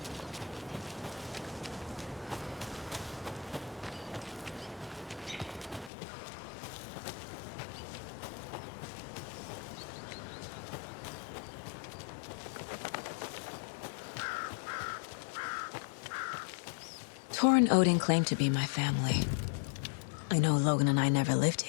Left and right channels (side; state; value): right; drops out; at 5.9 s